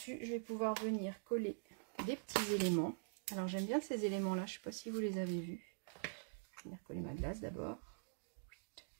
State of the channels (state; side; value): silent; left; digital silence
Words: je vais pouvoir venir coller des petits éléments. Alors, j'aime bien ces éléments-là. Je ne sais pas si vous les avez vus. Je vais venir coller ma glace d'abord.